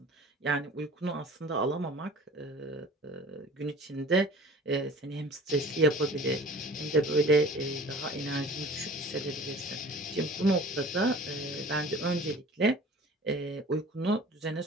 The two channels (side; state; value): both; normal; correlation 0.44